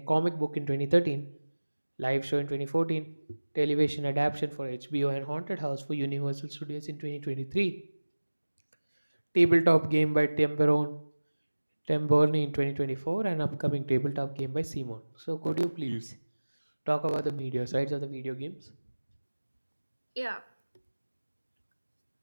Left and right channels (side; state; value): both; inverted; correlation -1.00